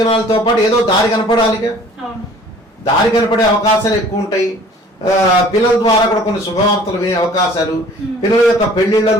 పాటు ఏదో దారి కనపడాలిగా, దారి కనపడే అవకాశాలు ఎక్కువ ఉంటాయి. పిల్లల ద్వారా కూడా కొన్ని శుభవార్తలు వినే అవకాశాలు, పిల్లల యొక్క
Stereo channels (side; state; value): both; normal; correlation 0.51